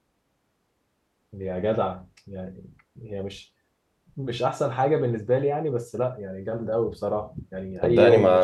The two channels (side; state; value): both; identical; correlation 1.00